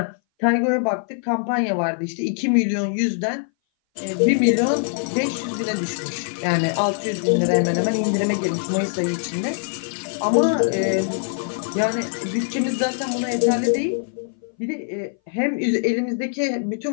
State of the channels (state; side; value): silent; right; 59 dB below the other